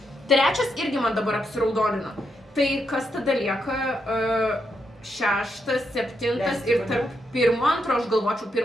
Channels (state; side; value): normal; both; correlation 0.81